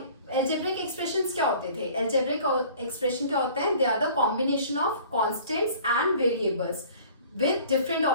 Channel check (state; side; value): inverted; both; correlation -0.49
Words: अलजेब्रिक एक्सप्रेशंस क्या होते थे? अलजेब्रिक एक्सप्रेशन क्या होते हैं? They are the combination of constants and variables with different